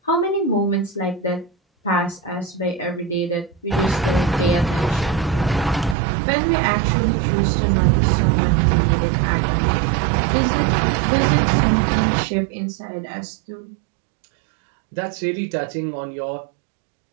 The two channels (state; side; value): drops out; left; at 6.0 s